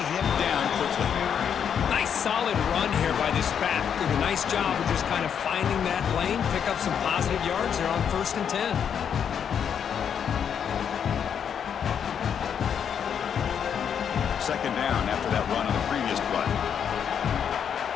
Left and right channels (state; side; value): quieter; right; 8.0 dB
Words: him down quickly. Nice solid run here by this back. Did a nice job of just kind of finding that lane, pick up some positive yards there on 1st and 10. Second down after that run on the previous play.